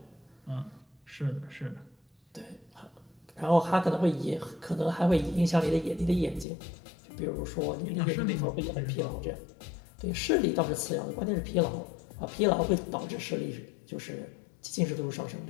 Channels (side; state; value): right; drops out; at 6.5 s